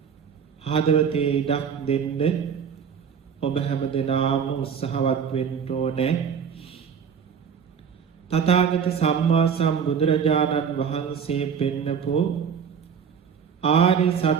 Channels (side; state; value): left; quieter; 7.0 dB